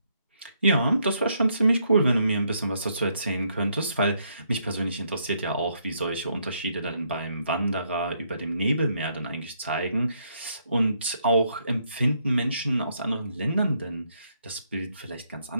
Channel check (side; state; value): both; inverted; correlation -0.74